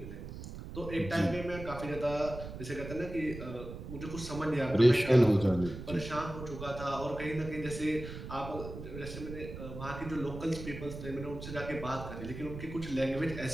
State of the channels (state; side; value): noise; right; rumble, 10 dB below the sound